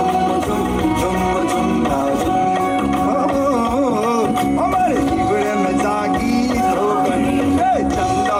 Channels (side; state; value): both; identical; correlation 1.00